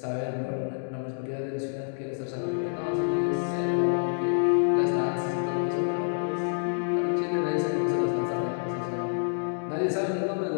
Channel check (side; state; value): right; silent; digital silence